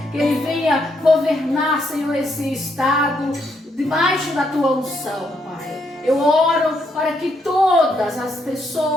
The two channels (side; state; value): both; normal; correlation 0.75